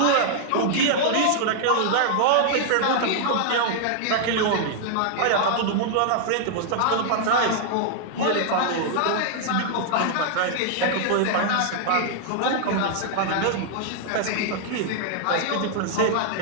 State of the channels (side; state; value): both; different; correlation 0.00